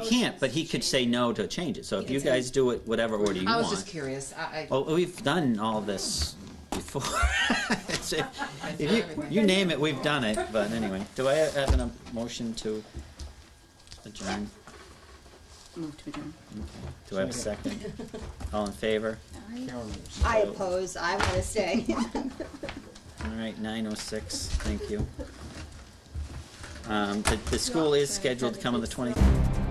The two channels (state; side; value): identical; both; correlation 1.00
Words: can't. But to he could change say it. no to change it. So He if can you say- guys do it whatever order you I was want. just curious. Well, we've done all this before. If you name it, we've done it. But anyway, do I have a motion to adjourn? Move to adjourn. Do I have a second? All in favor? I oppose, I wanna stay. All right, 9:06. Thank you. The school is scheduled to come on the 20th.